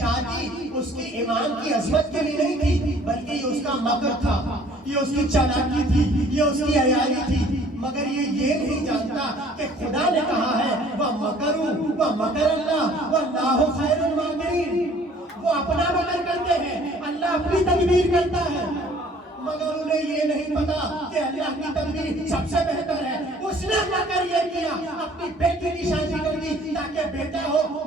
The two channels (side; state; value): both; normal; correlation 0.55